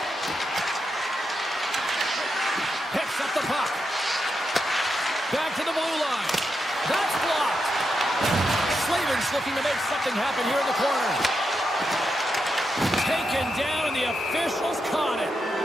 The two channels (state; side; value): normal; both; correlation 0.85